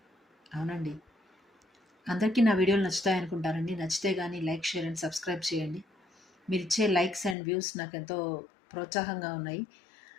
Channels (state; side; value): drops out; right; at 7.4 s